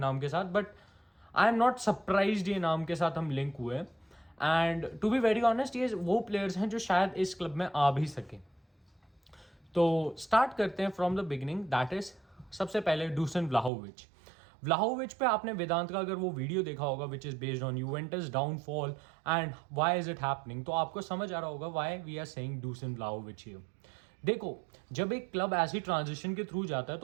के साथ, but I am not surprised ये नाम के साथ हम लिंक हुए. And to be very honest ये वो प्लेयर्स हैं जो शायद इस क्लब में आ भी सके. तो स्टार्ट करते हैं from the beginning. That is सबसे पहले डूसन व्लाहोविच. व्लाहोविच पे आपने वेदांत का अगर वो वीडियो देखा होगा which is based on Juventus downfall and why is it happening, तो आपको समझ आ रहा होगा why we are saying Dusan Vlahovic here. देखो, जब एक क्लब ऐसी ट्रांजिशन के थ्रू जाता है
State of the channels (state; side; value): drops out; left; at 13.7 s